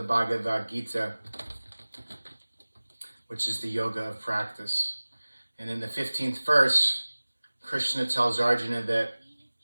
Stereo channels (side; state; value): both; inverted; correlation -1.00